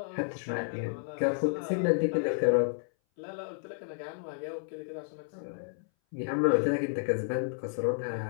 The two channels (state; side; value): silent; right; 57 dB below the other